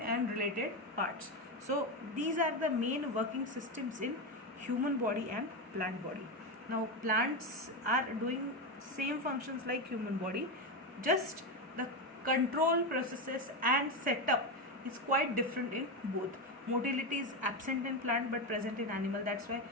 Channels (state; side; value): normal; both; correlation 0.13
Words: related parts. So these are the main working systems in human body and plant body. Now plants are doing same functions like human body, just the control processes and setup is quite different in both. Motility is absent in plant but present in animal. That's why